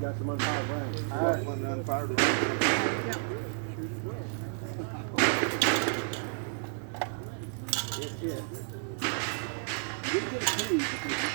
got some unfired rounds. I got one unfired round. That's it. You didn't get a key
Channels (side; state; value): left; silent; 57 dB below the other